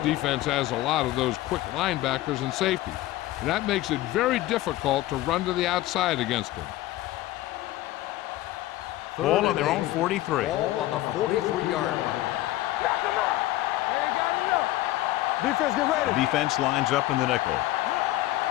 has a lot of those quick linebackers and safeties, and that makes it very difficult to run to the outside against him. Ball on their own 43. Ball on the 43-yard line. Knock him out. They ain't got enough. Defense, get ready. Defense lines up in the nickel.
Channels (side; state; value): right; quieter; 16.3 dB